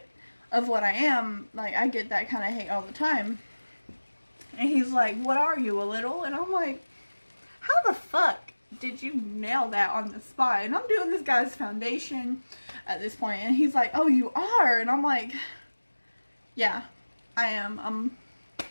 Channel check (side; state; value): both; inverted; correlation -1.00